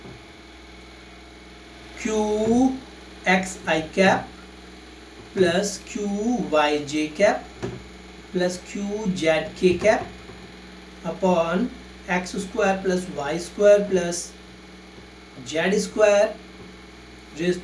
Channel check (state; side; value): identical; both; correlation 1.00